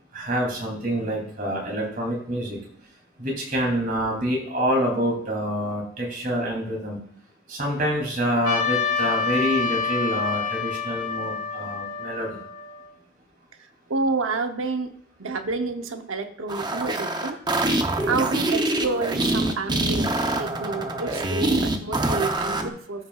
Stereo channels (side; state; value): both; normal; correlation 0.31